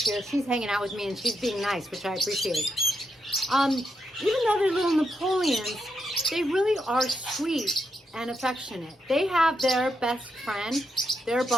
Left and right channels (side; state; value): both; normal; correlation 0.82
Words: here, she's hanging out with me and she's being nice, which I appreciate. Even though they're little Napoleons, they really are sweet and affectionate. They have their best friend, their